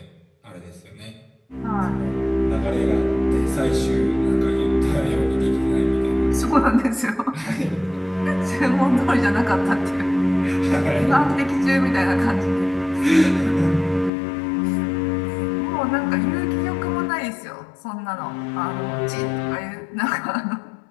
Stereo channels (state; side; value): drops out; right; at 14.1 s